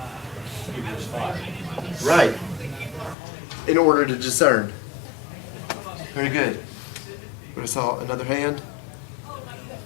Hebrews 5. Right. In order to discern. Very good. I saw another hand.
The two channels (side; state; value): right; drops out; at 3.2 s